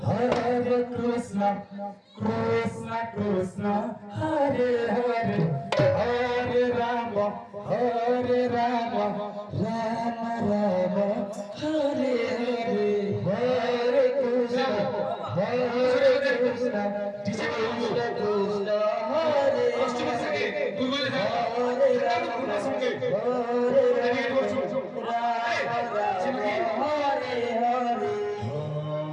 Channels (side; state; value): both; identical; correlation 1.00